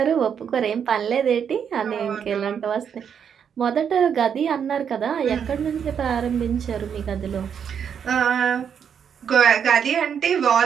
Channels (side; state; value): left; quieter; 7.7 dB